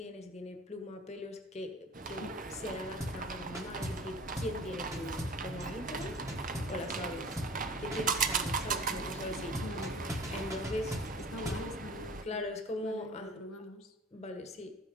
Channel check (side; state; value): both; normal; correlation 0.43